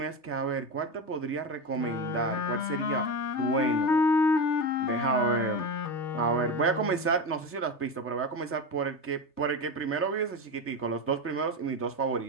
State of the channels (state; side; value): late; right; 3.3 ms